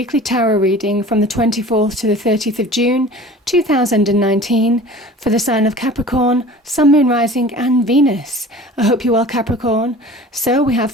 tarot reading from the 24th to the 30th of June 2019 for the sign of Capricorn, Sun, Moon, Rising and Venus. I hope you're well, Capricorn. So we have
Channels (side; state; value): both; normal; correlation 0.42